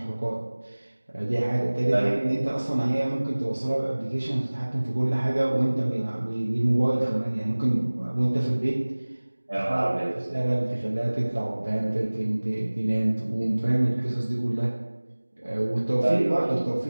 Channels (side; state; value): both; inverted; correlation -1.00